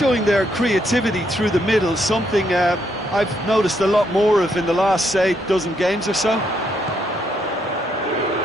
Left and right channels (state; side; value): normal; both; correlation 0.75